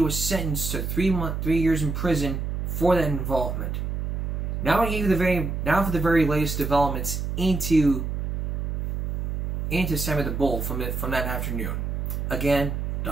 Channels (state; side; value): noise; right; hum, 2 dB below the sound